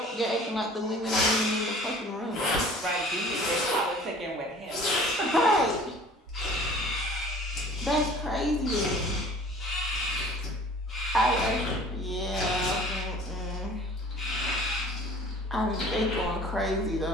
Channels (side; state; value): both; normal; correlation 0.48